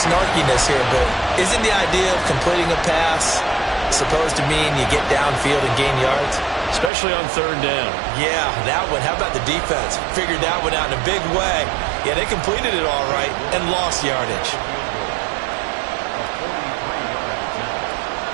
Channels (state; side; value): drops out; left; at 6.9 s